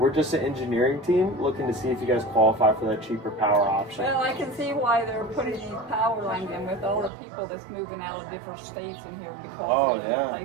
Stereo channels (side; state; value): left; drops out; at 7.1 s